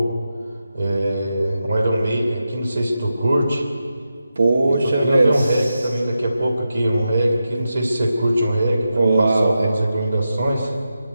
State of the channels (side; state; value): both; inverted; correlation -0.89